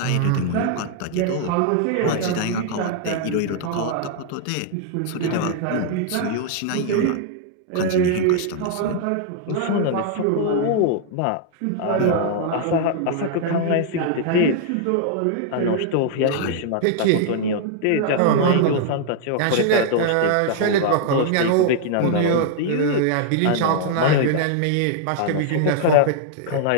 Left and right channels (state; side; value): different; both; correlation -0.01